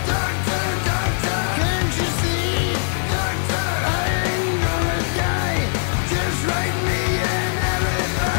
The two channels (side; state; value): right; silent; digital silence